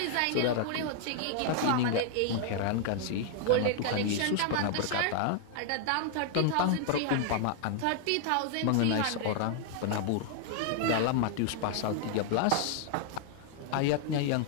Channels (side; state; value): both; different; correlation 0.00